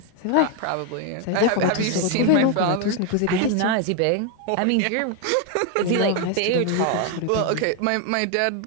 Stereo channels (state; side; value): different; both; correlation 0.01